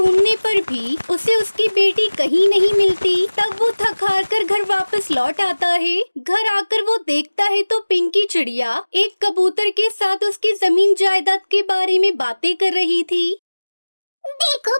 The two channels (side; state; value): both; inverted; correlation -1.00